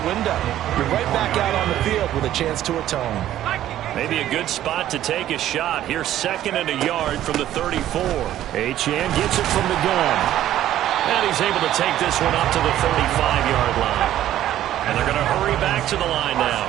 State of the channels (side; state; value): left; quieter; 12.6 dB